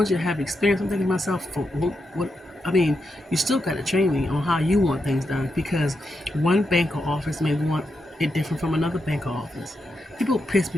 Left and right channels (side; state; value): both; normal; correlation 0.85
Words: you to have experience. I'm thinking to myself, for what I mean, you still got to train me on how you want things done, because one bank or office may want it different from another bank or office. People piss